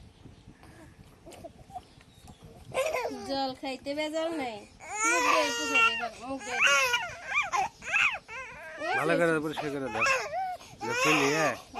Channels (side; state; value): both; identical; correlation 1.00